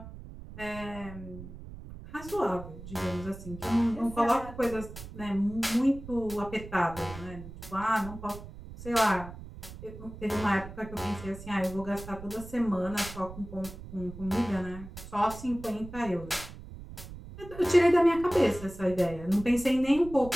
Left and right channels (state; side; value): noise; right; rumble, 14 dB below the sound